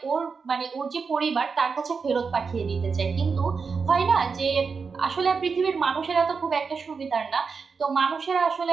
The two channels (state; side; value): quieter; left; 5.2 dB